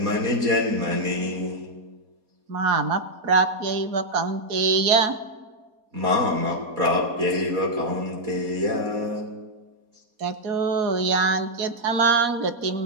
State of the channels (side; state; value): left; late; 4.2 ms